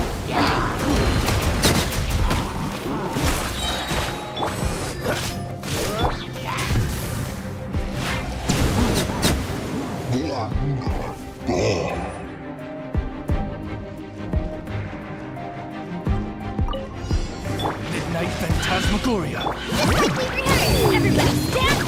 Midnight Phantasmagoria. Everybody stand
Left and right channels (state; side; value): identical; both; correlation 1.00